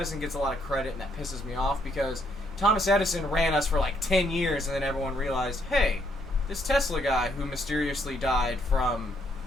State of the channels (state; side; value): normal; both; correlation 0.72